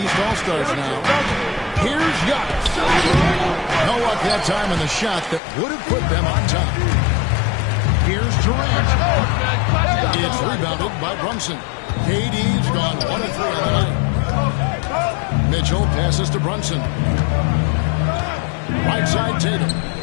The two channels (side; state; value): right; drops out; at 5.4 s